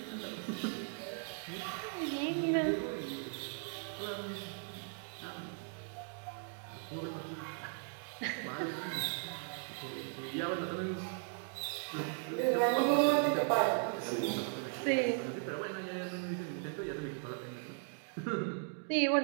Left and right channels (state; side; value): silent; left; 53 dB below the other